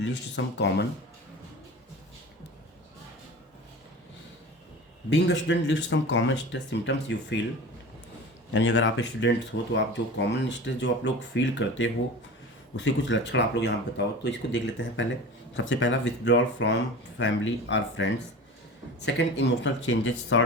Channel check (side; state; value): both; normal; correlation 0.34